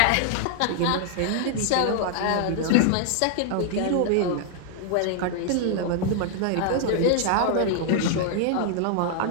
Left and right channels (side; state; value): both; different; correlation 0.00